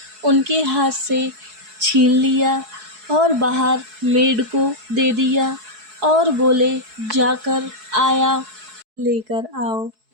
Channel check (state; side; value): late; left; 4.7 ms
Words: उनके हाथ से छीन लिया और बाहर मेड को दे दिया और बोले, जाकर आया लेकर आओ,